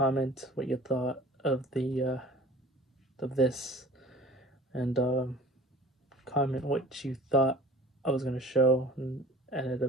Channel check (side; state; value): both; normal; correlation 0.45